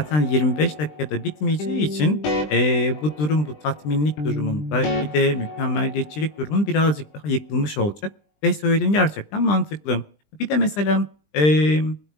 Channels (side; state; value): right; late; 20 ms